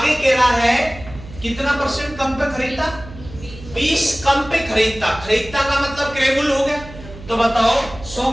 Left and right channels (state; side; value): noise; right; hum, 16 dB below the sound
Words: कह रहा है कितना परसेंट कम पे खरीदता? 20 कम पे खरीदता, खरीदता का मतलब क्रय मूल्य हो गया, तो बताओ 100